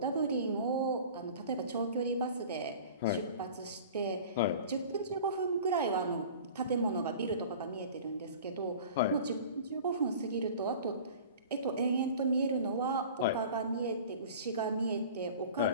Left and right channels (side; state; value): both; inverted; correlation -0.41